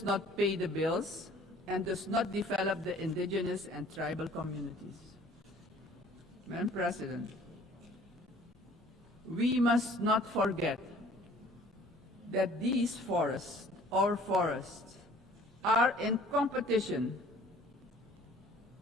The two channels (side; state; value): both; normal; correlation 0.53